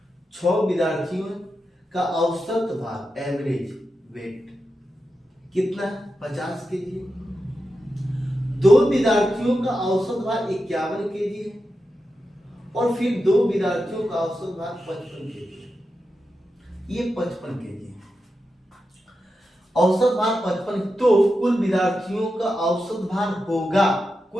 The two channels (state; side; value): normal; both; correlation 0.89